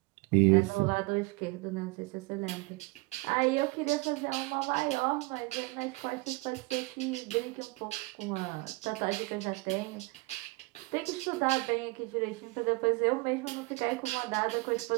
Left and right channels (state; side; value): quieter; left; 25.0 dB